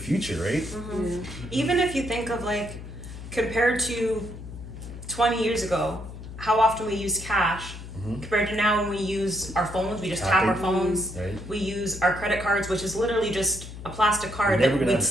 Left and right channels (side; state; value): left; noise; hum, 12 dB below the sound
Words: right? Even if you think of like compared to 20 years ago, how often we use cash compared to now when we use our phones, we just tap our phones. Right. We use our credit cards, which is literally just a plastic card We're never that gonna we've have